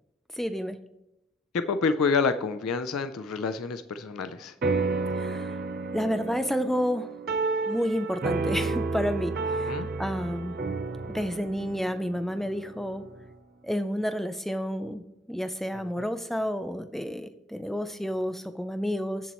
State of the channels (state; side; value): normal; both; correlation 0.64